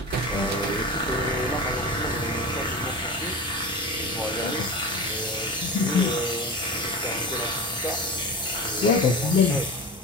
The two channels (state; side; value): normal; both; correlation 0.28